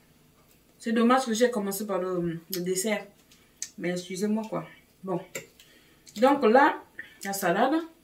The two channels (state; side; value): identical; both; correlation 1.00